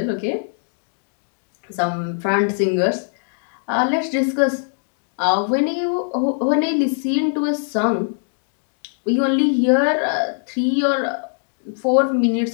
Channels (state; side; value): silent; right; digital silence